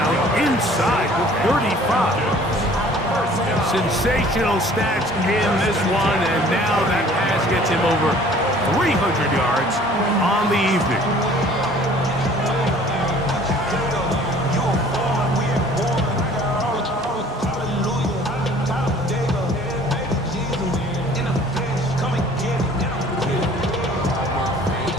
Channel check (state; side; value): normal; both; correlation 0.52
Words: inside the 35. Sensational stats in this one, and now that pass gets him over 300 yards on the evening.